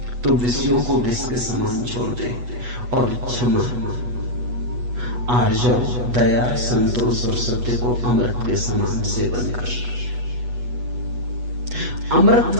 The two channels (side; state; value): left; late; 8.2 ms